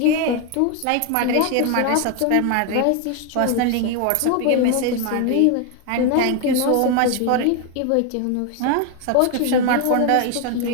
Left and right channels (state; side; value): different; both; correlation 0.01